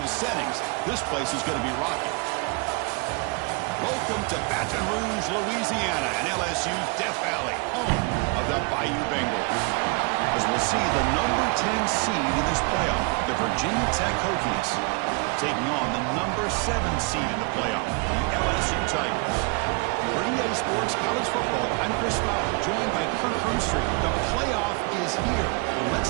settings. This place is going to be rocking. Welcome to Baton Rouge, Louisiana, and LSU's Death Valley, home of the Bayou Bengals. As we'll see, the number 10 seed in this playoff, the Virginia Tech Hokies, taking on the number 7 seed in the playoff, the LSU Tigers. For EA Sports College Football, I'm Chris Fowler, joined by Kirk Hermstreet. The playoff is here, and let's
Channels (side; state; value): left; quieter; 31.0 dB